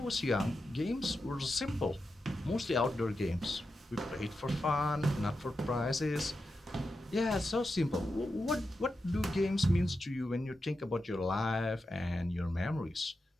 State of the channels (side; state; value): both; normal; correlation 0.89